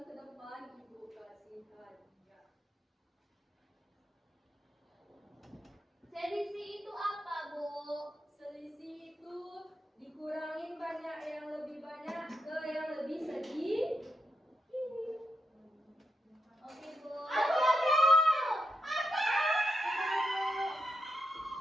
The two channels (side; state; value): both; normal; correlation 0.84